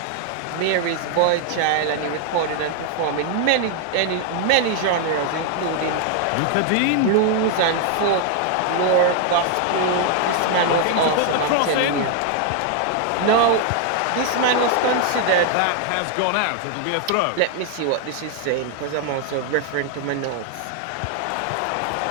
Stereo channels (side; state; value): both; different; correlation 0.00